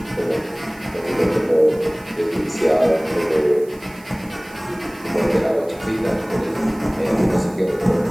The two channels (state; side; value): noise; right; hiss, 24 dB below the sound